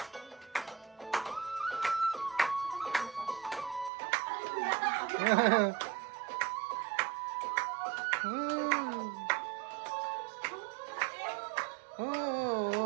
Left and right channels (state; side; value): drops out; left; at 3.9 s